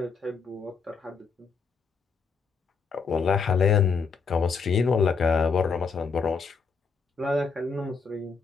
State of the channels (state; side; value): quieter; right; 5.2 dB